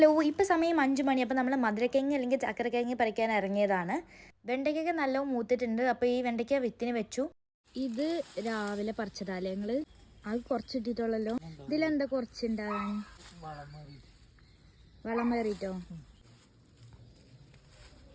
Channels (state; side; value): identical; both; correlation 1.00